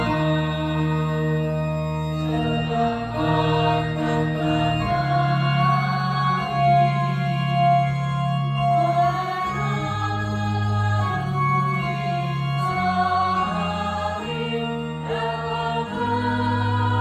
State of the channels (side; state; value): both; identical; correlation 1.00